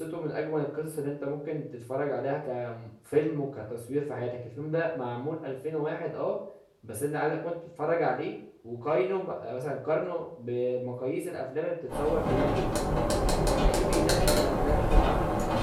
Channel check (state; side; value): identical; both; correlation 1.00